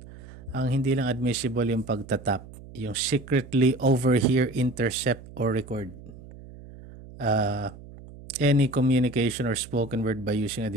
Ang hindi lang admissible yung pagtatap, yung secretly over here, intercept, or record. Any communication or spoken word by using a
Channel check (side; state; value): right; noise; hum, 17 dB below the sound